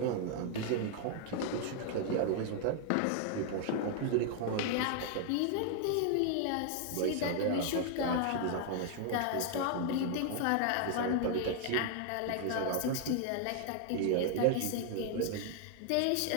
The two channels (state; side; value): different; both; correlation 0.00